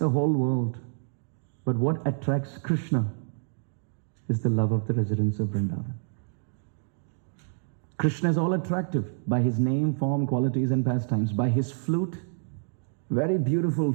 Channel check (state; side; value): silent; left; digital silence